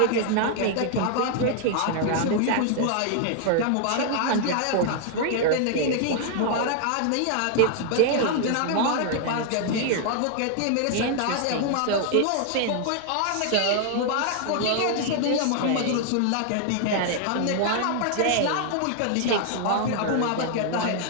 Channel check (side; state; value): both; different; correlation 0.00